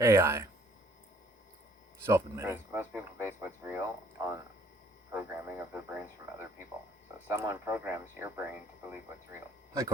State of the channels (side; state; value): both; normal; correlation 0.61